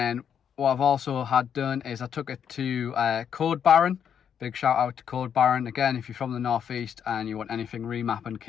what I've also had done is I took it to Towbar. Big shout out to Towbar. Again, if you're from the northeast and you want anything remapping,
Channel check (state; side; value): quieter; right; 8.2 dB